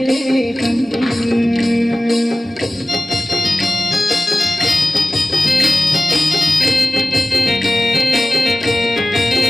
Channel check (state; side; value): normal; both; correlation 0.95